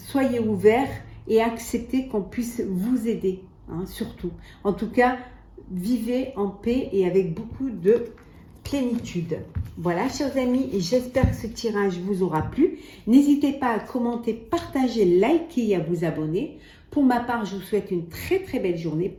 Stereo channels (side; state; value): both; identical; correlation 1.00